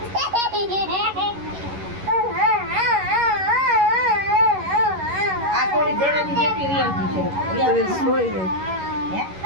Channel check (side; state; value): left; late; 11 ms